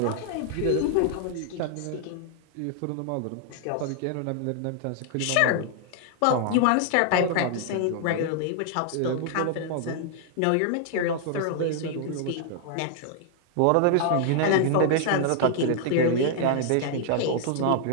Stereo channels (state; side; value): different; both; correlation 0.00